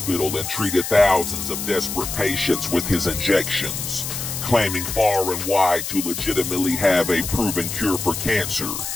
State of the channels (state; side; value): noise; left; hiss, 5 dB below the sound